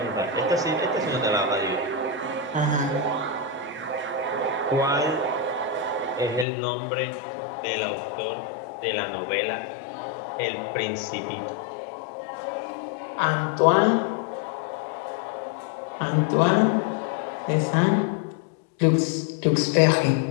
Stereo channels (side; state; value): right; drops out; at 6.5 s